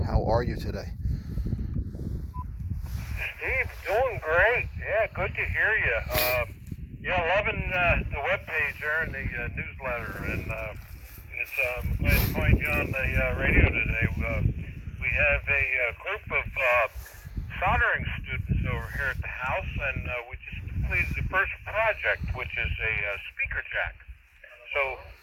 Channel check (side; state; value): both; identical; correlation 1.00